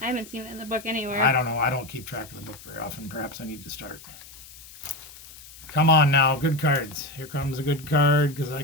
I haven't seen it in the book anywhere. I don't know. I don't keep track of the book very often. Perhaps I need to start. Come on now. Good cards. Here comes a good card because I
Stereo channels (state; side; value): noise; left; hiss, 19 dB below the sound